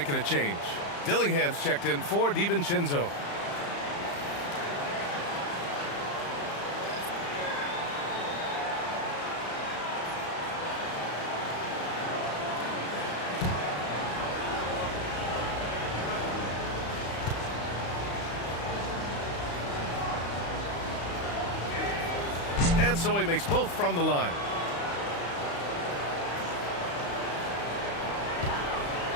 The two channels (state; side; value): late; right; 35 ms